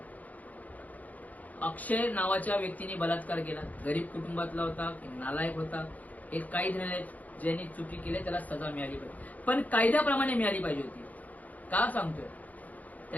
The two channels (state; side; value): late; right; 0.077 ms